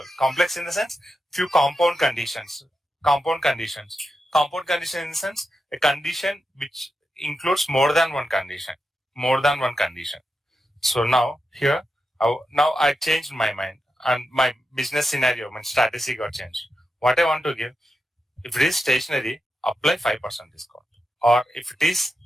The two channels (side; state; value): both; normal; correlation 0.88